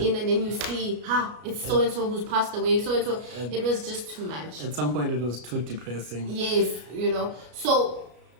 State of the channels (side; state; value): left; late; 33 ms